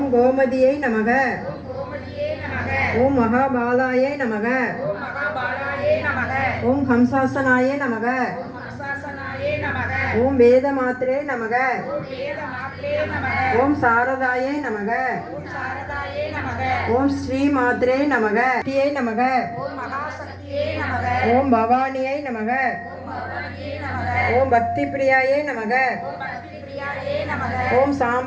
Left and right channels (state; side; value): identical; both; correlation 1.00